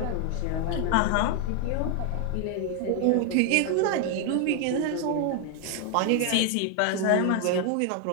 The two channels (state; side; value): different; both; correlation 0.00